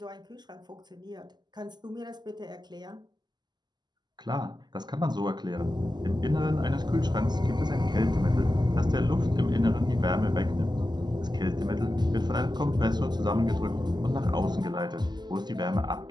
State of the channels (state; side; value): late; left; 0.21 ms